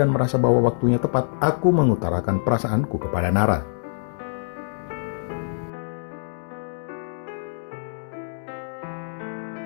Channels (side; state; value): right; silent; digital silence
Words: merasa bahwa waktunya tepat, aku mengutarakan perasaanku kepada Nara.